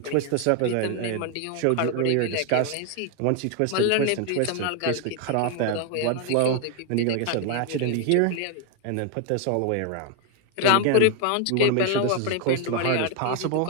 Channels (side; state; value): both; different; correlation 0.01